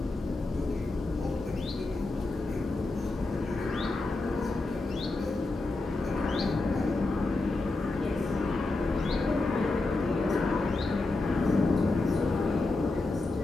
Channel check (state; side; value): quieter; right; 3.2 dB